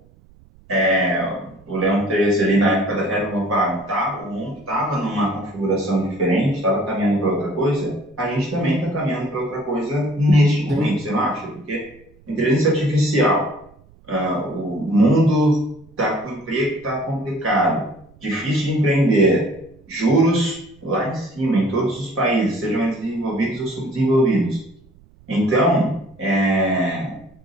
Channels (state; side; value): noise; right; rumble, 27 dB below the sound